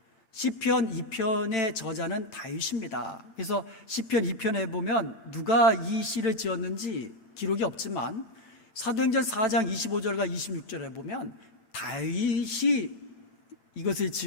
시편 2편의 저자는 다윗입니다. 그래서 시편 2편에 보면 누가 이 시를 지었는지 기록이 없지만 사도행전 4장 25절과 26절에 보면 다윗이 이것을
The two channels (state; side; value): late; right; 8.3 ms